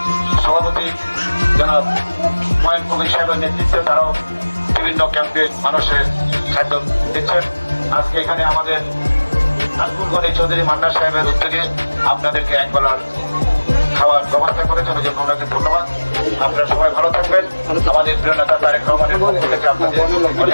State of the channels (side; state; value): both; inverted; correlation -1.00